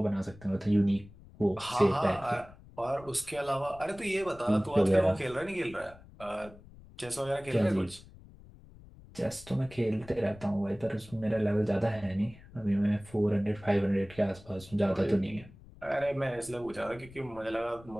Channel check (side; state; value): left; noise; rumble, 21 dB below the sound